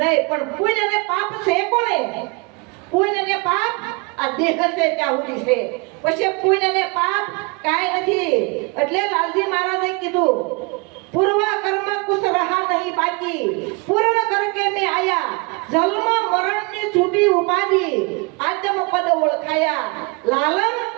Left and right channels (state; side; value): quieter; left; 29.8 dB